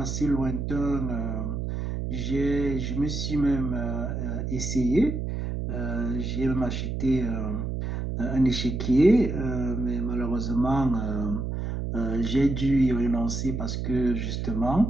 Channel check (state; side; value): noise; right; hum, 3 dB below the sound